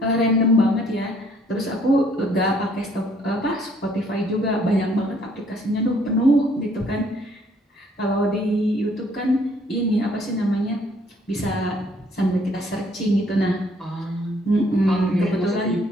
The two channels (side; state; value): both; normal; correlation 0.63